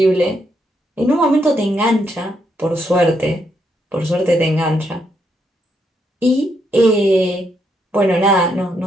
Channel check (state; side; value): normal; both; correlation 0.77